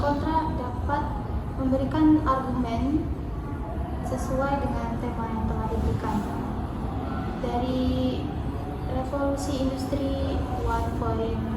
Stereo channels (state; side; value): identical; both; correlation 1.00